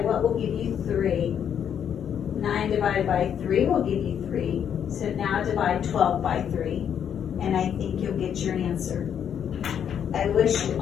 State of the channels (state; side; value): quieter; right; 8.6 dB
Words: will give you 3? 9 divided by 3 will give you 3. So now divide 12 by 3. And I think you'll get your answer. I wish you